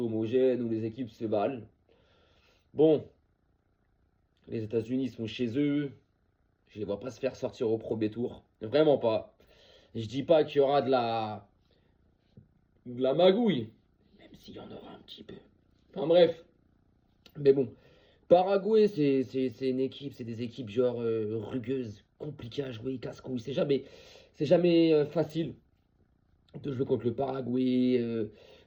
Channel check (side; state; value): both; identical; correlation 1.00